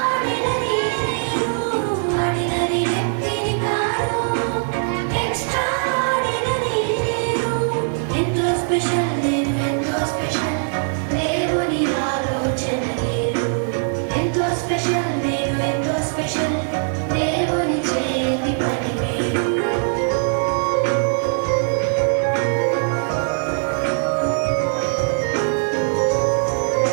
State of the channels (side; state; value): left; silent; 59 dB below the other